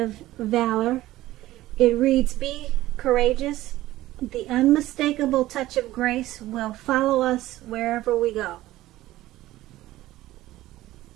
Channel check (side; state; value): left; quieter; 16.0 dB